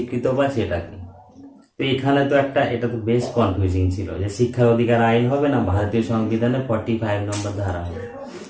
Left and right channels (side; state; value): both; identical; correlation 1.00